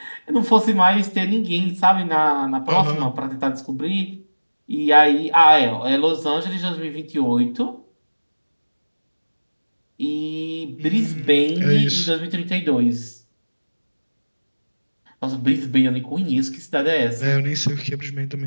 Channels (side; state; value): both; inverted; correlation -1.00